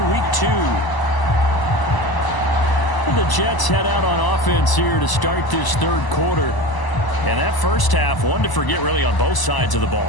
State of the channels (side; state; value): right; late; 1.0 ms